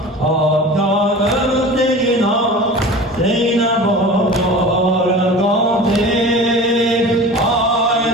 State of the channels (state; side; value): normal; both; correlation 0.37